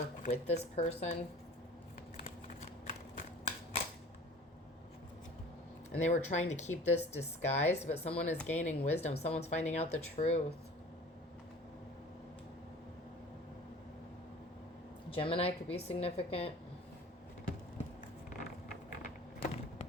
with this person. And they were trying to keep this disguised, but someone is gaining wisdom. Someone's finding out the truth. Gemini could be significant.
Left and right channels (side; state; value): both; normal; correlation 0.44